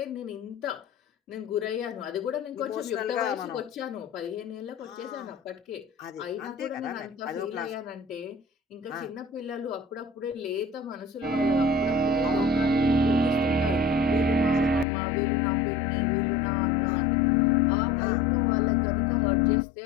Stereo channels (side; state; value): right; drops out; at 14.9 s